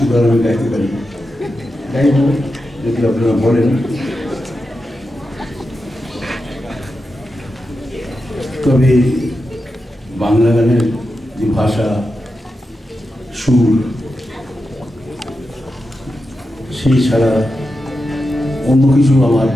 গান আমি গাইতে পারি, গাইব যদি আপনারা বলেন। তবে বাংলা গানের যে ভাষা, সুর, সেই ছাড়া অন্য কিছু আমার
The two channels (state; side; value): normal; both; correlation 0.89